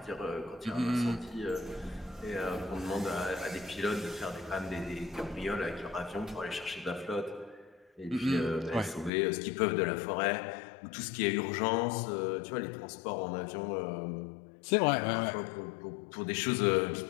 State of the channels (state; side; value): drops out; right; at 9.1 s